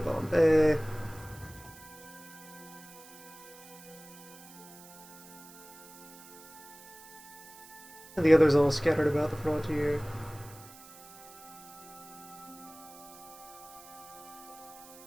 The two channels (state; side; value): noise; right; hiss, 19 dB below the sound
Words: And the others all scattered about the frontier.